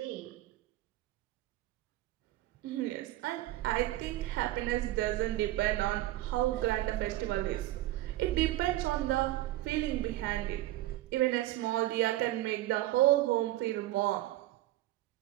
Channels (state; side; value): quieter; left; 15.9 dB